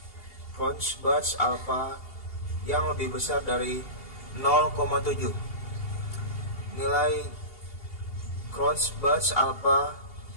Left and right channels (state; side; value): late; right; 2.8 ms